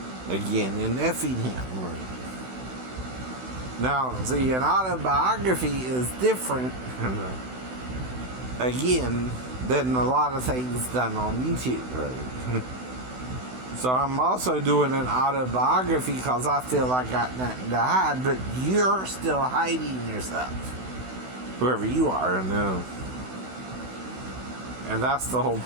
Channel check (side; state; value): left; late; 16 ms